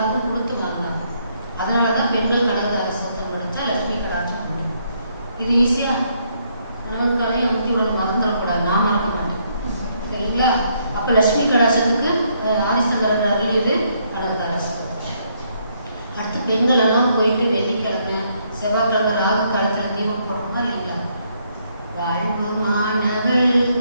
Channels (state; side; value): inverted; both; correlation -0.72